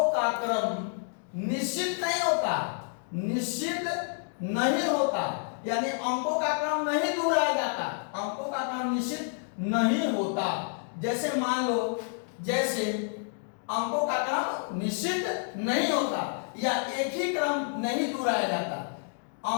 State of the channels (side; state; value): right; silent; 58 dB below the other